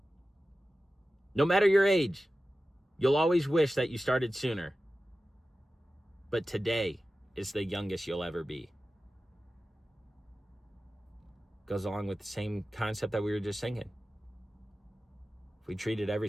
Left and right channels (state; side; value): normal; both; correlation 0.94